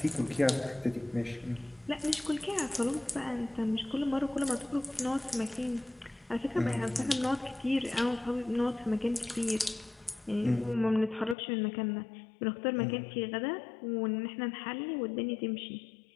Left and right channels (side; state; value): right; drops out; at 11.4 s